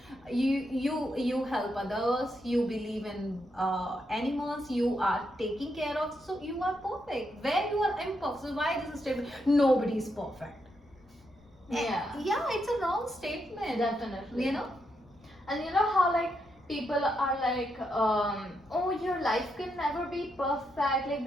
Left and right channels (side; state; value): left; noise; rumble, 28 dB below the sound